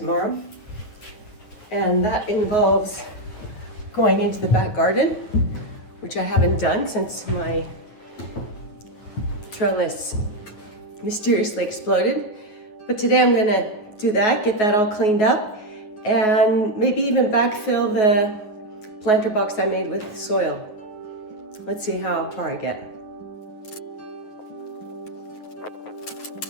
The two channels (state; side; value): late; right; 9.4 ms